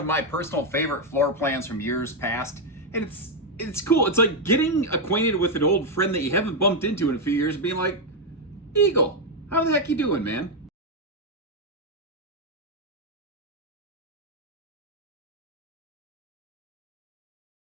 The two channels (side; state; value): both; normal; correlation 0.02